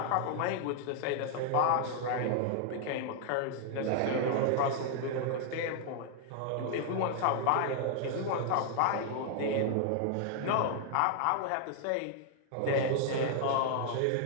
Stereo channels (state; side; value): different; both; correlation 0.00